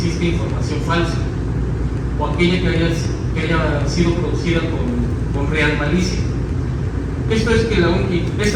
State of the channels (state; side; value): identical; both; correlation 1.00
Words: información falsa o aquella que haya sido producida con real malicia. Esto es